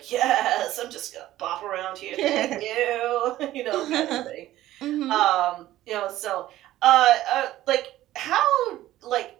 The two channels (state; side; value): quieter; left; 14.7 dB